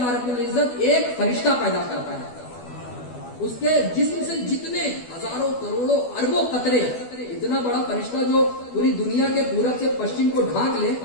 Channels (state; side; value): late; right; 12 ms